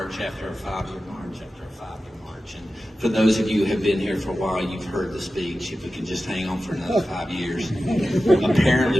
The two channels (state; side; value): normal; both; correlation 0.94